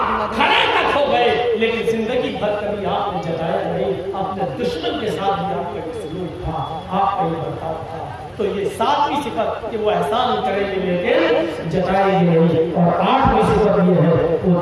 کھڑے تک ہو گئے لیکن زندگی بھر کبھی آپ نے جتایا نہیں، اپنے دشمن کے ساتھ بھی آپ کا یہ سلوک تھا، آپ کا یہ برتاؤ تھا۔ تو یہ 7ویں صفت کہ وہ احسان کریں گے لیکن جتائیں گے نہیں، اور 8ویں صفت یہ ہے وہ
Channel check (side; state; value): both; identical; correlation 1.00